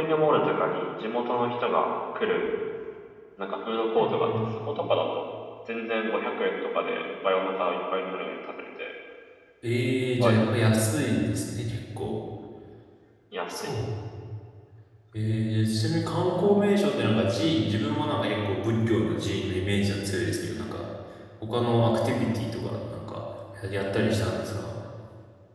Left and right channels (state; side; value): identical; both; correlation 1.00